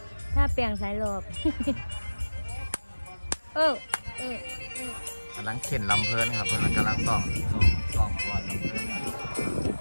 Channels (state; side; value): inverted; both; correlation -1.00